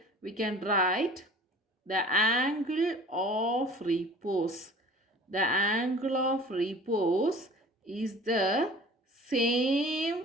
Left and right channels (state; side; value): normal; both; correlation 0.45